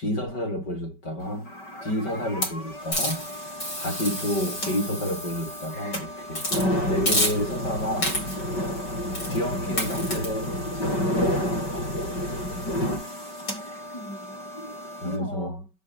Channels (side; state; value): right; late; 5.2 ms